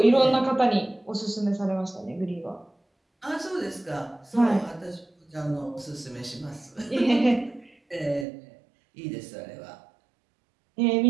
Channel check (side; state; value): left; drops out; at 8.2 s